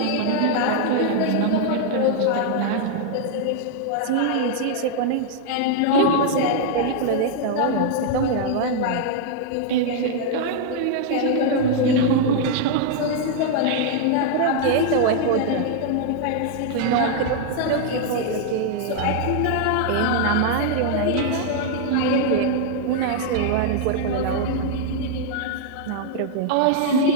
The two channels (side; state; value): both; different; correlation 0.00